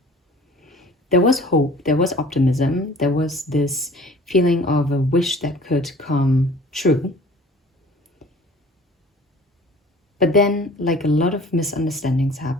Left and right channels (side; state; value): both; normal; correlation 0.48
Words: there was optimism, there was this feeling of a wish that could come true. But then, like, a lot of misunderstandings